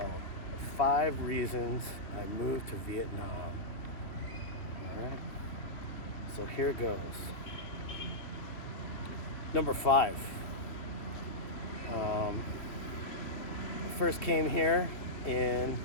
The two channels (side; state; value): right; late; 2.4 ms